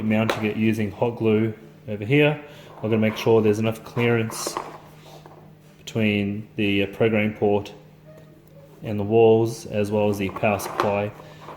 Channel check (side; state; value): both; identical; correlation 1.00